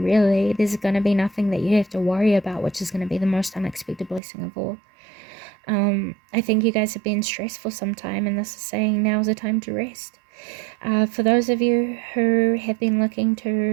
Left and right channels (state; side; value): drops out; left; at 4.2 s